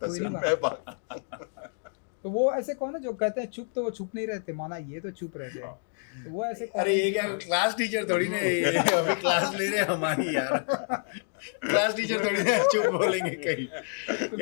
सिर्फ मैं भागता। तो वो ऐसे कौन है जो कहते हैं चुप, तो वो चुप नहीं रहते, माना ये तो चुप रहते हैं। तो वो ऐसे अरे ये क्या क्लास टीचर थोड़ी ना, अभी क्लास ले रहे हैं हमारी यार। क्लास टीचर थोड़ी ना चुप बोलेंगे कहीं।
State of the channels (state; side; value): silent; right; digital silence